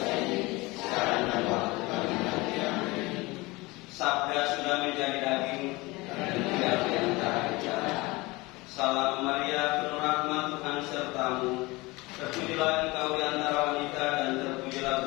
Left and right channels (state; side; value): quieter; right; 22.8 dB